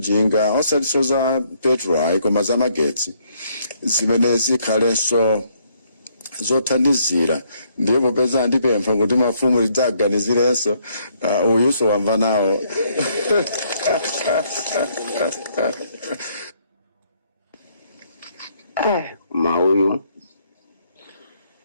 osati za petrol koma za magetsi zimene zikhalenso zothandizira. Ndipo popeza ndipempha kuti mafumu lidzaganizirenso uyuso wamva nawo. Mauyu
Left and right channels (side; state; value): both; inverted; correlation -0.69